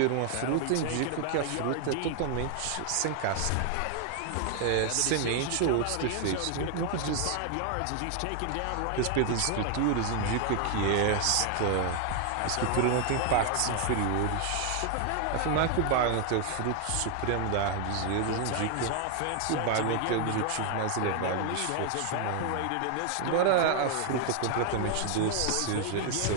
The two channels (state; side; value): different; both; correlation 0.00